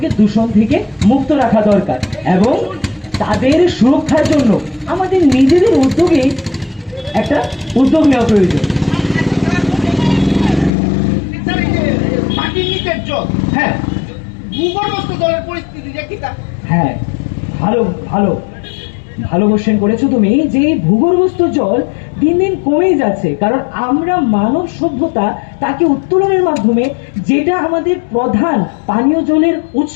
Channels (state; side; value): drops out; right; at 10.7 s